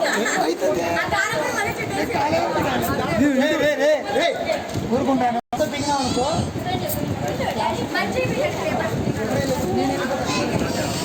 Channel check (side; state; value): both; identical; correlation 1.00